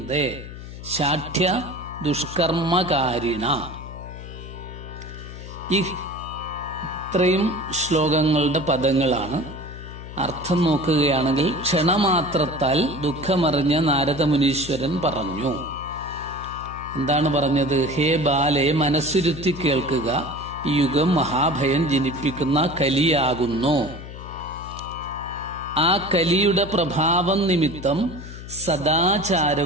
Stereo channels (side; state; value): left; noise; hum, 12 dB below the sound